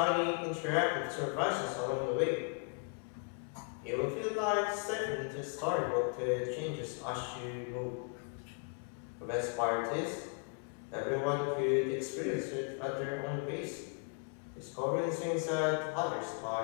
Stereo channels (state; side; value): quieter; right; 39.2 dB